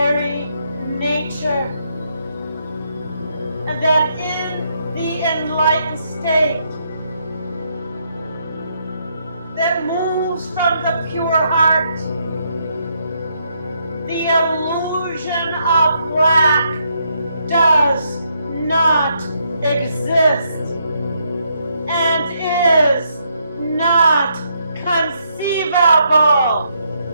nature, and that in the enlightened state that moves from the pure heart, the illusion of lack does not exist and is not conceivable.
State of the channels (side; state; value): both; inverted; correlation -0.75